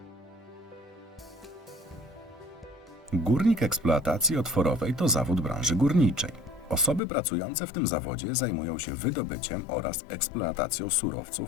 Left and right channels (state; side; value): drops out; right; at 7.0 s